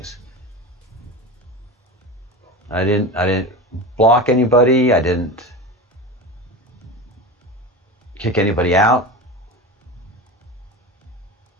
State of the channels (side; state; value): both; normal; correlation 0.27